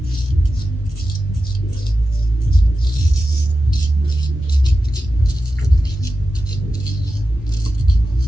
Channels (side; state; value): both; normal; correlation 0.92